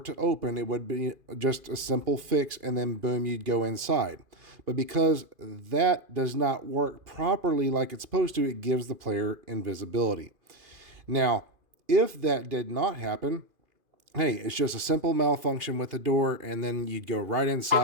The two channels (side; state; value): left; late; 2.5 ms